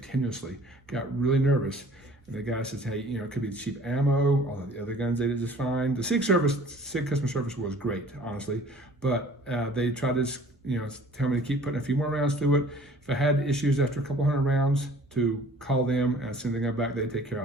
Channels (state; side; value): normal; both; correlation 0.51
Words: Got really nervous. And the guy says, hey, it could be cheap ammo. All of the other guns they did just fine. The Sig customer service was great, honestly. But they tried to, tell me to keep putting a few more rounds through it. If I had issues after a couple hundred rounds, to call them and send the gun back, they'd take care